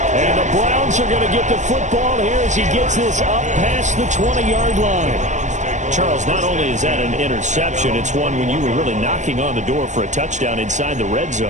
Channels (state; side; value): late; left; 0.35 ms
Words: And the Browns are going to get the football here as he gets this up past the 20-yard line. Charles, not only is that an interception, it's one when you were really knocking on the door for a touchdown inside the red